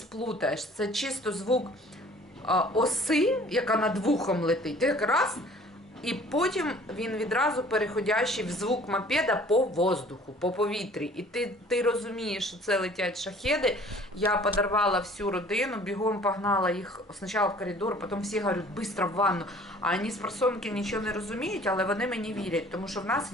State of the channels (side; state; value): both; normal; correlation 0.52